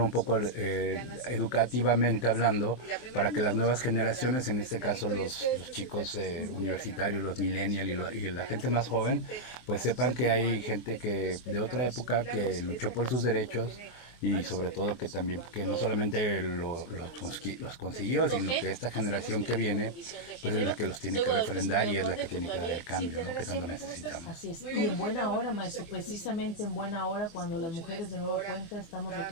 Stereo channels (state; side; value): late; right; 24 ms